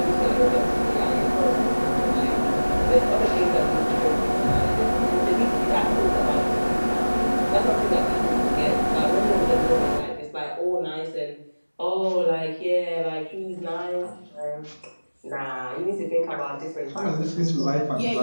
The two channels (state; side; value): inverted; both; correlation -1.00